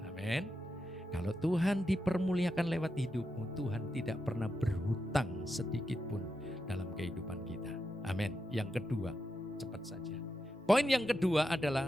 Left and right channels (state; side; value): normal; both; correlation 0.87